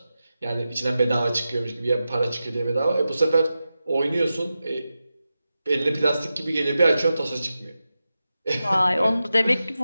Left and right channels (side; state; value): both; inverted; correlation -0.92